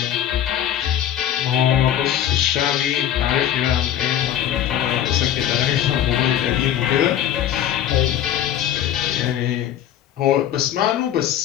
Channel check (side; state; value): right; quieter; 10.9 dB